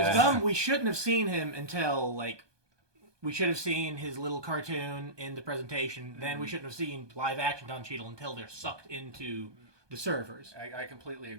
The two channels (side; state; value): left; late; 1.2 ms